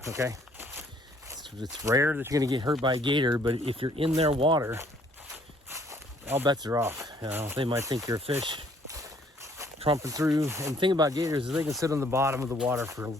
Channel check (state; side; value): normal; both; correlation 0.62